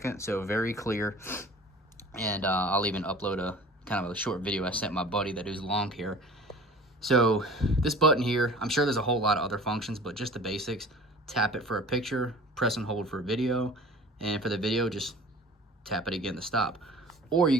so very clear. And I'll even upload a kind of a short video I sent my buddy that is long hair. So this button here, I'm sure there's a whole lot of other functions, but just the basics. Tap it for a picture, press and hold for a video, and for the video just tap it again to stop. Or you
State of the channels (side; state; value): both; normal; correlation 0.43